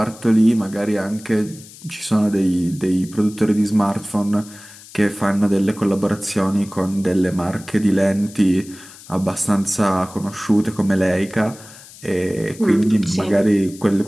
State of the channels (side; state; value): left; noise; hiss, 20 dB below the sound